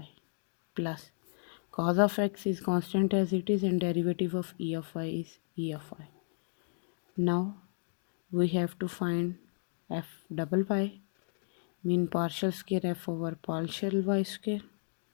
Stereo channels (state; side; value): silent; right; digital silence